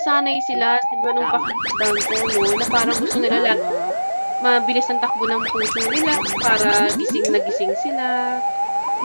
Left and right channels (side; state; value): both; inverted; correlation -1.00